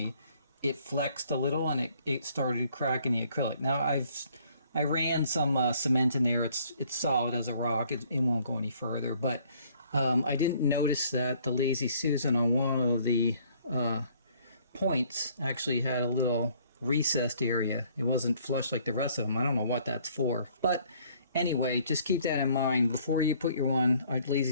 it flexed a little and it started cracking the acrylic. Now I ran some cement in there. It's solid as a rock. It won't go any further. But I didn't notice that the Lazy Susan on one of the points actually had a little recessed area. It wasn't flush like the rest of them. I don't know what that's for. But anyway, just keep that in mind. Before you put your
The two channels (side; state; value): both; inverted; correlation -0.61